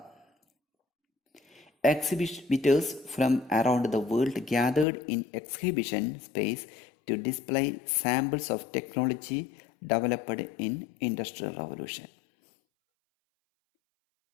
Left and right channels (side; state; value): right; drops out; at 4.9 s